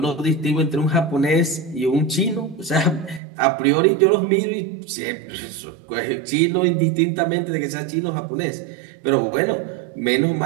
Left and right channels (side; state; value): left; drops out; at 3.2 s